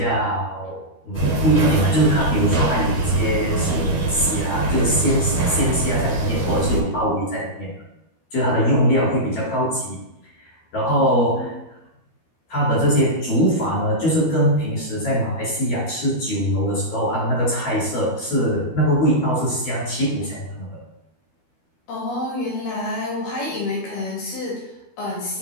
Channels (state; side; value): late; right; 12 ms